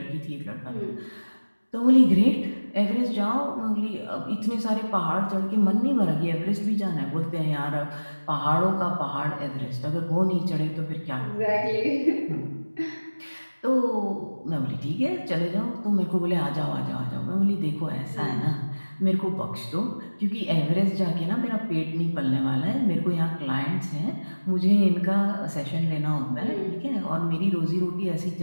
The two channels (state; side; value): inverted; both; correlation -1.00